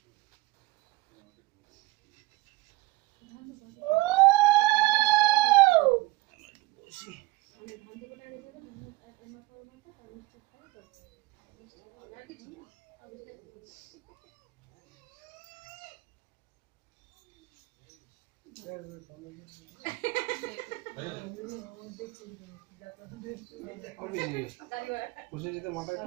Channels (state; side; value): quieter; left; 21.1 dB